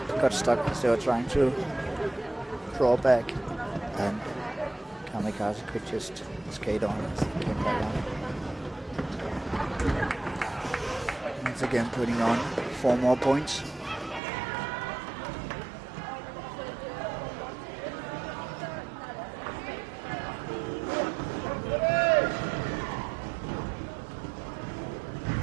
got stuck as they were trying to draw back, and Kamikaze could just skate on as he came back on. Once again putting on 4 more points.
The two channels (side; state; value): left; drops out; at 14.2 s